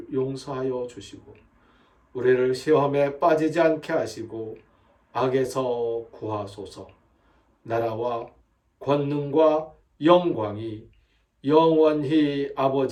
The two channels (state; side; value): identical; both; correlation 1.00